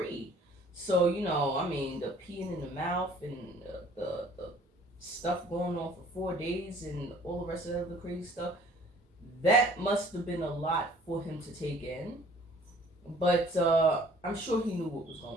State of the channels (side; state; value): both; normal; correlation 0.54